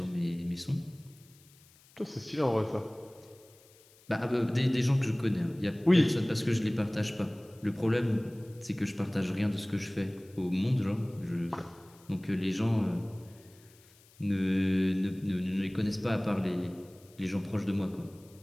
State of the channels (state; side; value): noise; left; hiss, 27 dB below the sound